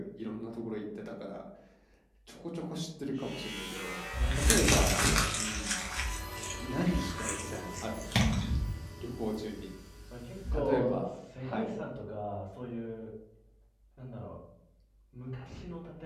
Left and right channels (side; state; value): both; identical; correlation 1.00